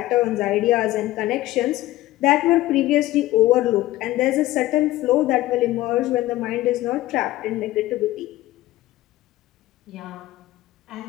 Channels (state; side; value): quieter; right; 16.4 dB